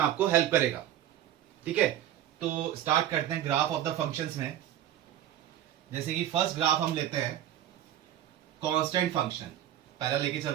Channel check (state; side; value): quieter; left; 12.0 dB